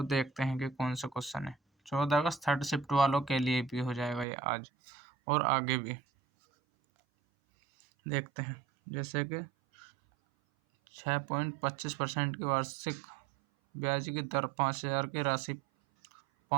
देखते हैं कि कौन सा क्वेश्चन है। 14 अगस्त थर्ड शिफ्ट वालों के लिए भी हो जाएगा ये आज और आगे भी देखते हैं। जैसे कि 6.25% की वार्षिक ब्याज की दर 5,000 की राशि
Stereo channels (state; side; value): drops out; left; at 4.2 s